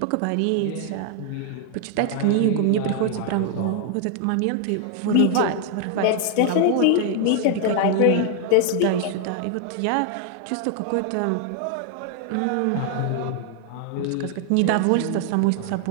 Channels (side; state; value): both; different; correlation 0.00